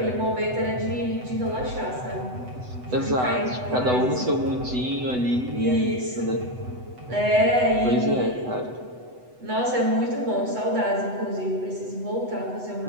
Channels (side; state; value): left; late; 8.0 ms